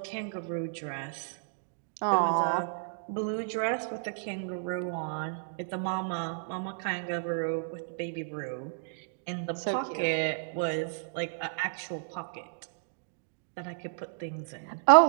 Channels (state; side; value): silent; left; digital silence